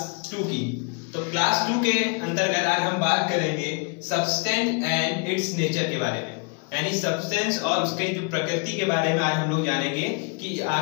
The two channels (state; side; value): quieter; right; 33.6 dB